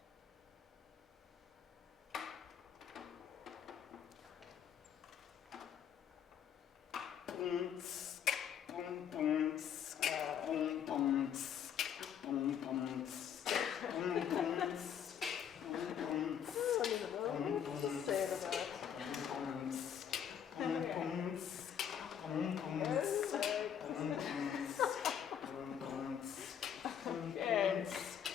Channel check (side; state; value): right; quieter; 8.7 dB